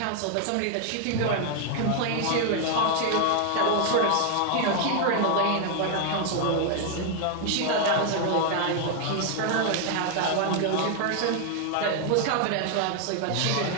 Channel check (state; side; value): different; both; correlation 0.00